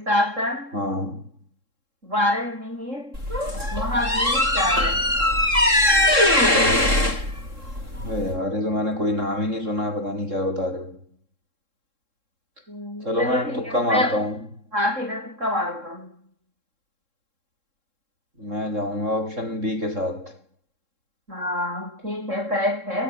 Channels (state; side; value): late; left; 3.7 ms